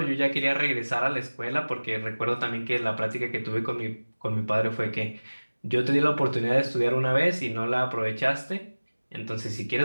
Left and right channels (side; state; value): both; inverted; correlation -1.00